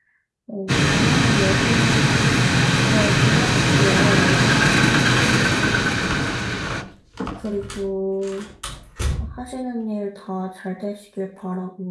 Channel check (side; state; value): both; identical; correlation 1.00